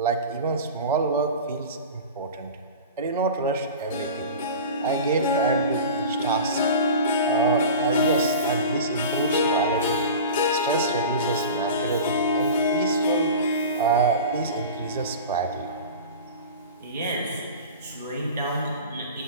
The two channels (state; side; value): inverted; both; correlation -0.34